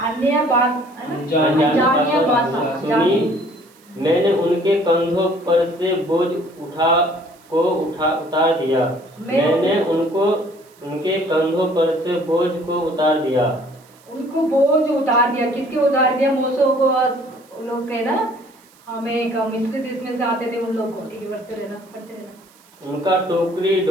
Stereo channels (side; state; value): right; noise; hiss, 29 dB below the sound